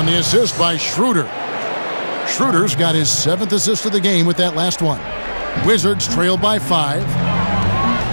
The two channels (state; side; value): inverted; both; correlation -1.00